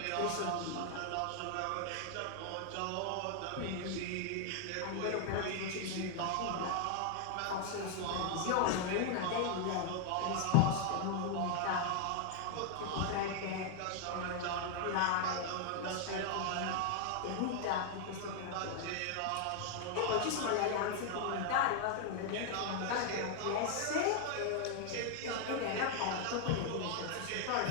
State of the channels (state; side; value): different; both; correlation 0.00